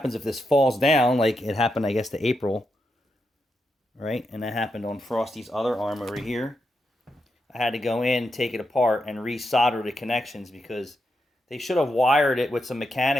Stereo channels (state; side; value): normal; both; correlation 0.85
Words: if this falls down, like it happened, I guess, to April, right? And that happened on Frosty's other arm over here. I had to go in, take it apart, and resolder the connections because they should have wired it with some